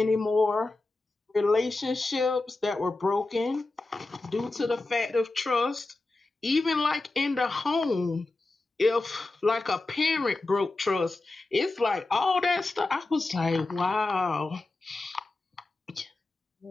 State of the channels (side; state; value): right; quieter; 3.2 dB